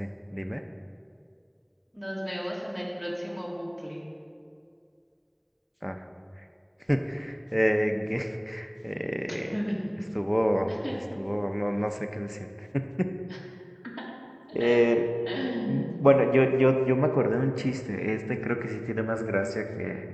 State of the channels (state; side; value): identical; both; correlation 1.00